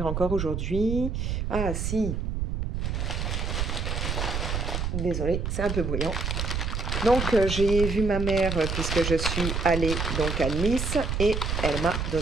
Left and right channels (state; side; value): noise; right; rumble, 2 dB below the sound